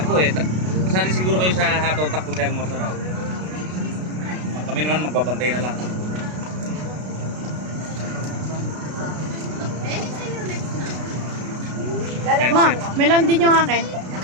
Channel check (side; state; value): left; late; 33 ms